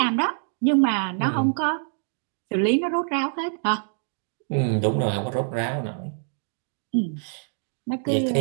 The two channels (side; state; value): left; silent; digital silence